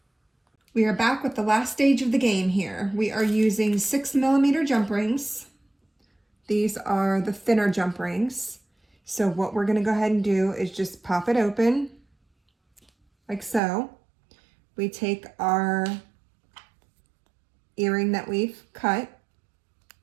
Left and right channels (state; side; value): drops out; left; at 13.6 s